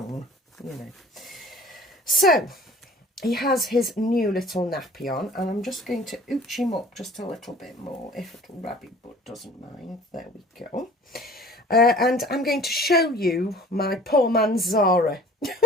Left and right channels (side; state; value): both; normal; correlation 0.48